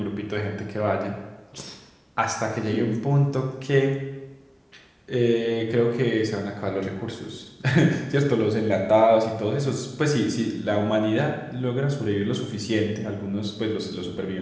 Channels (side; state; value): both; identical; correlation 1.00